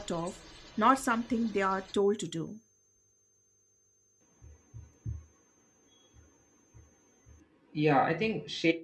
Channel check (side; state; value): both; identical; correlation 1.00